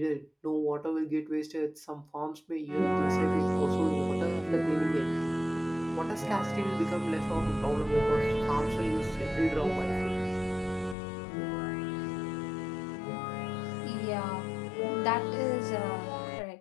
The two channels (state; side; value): drops out; right; at 11.0 s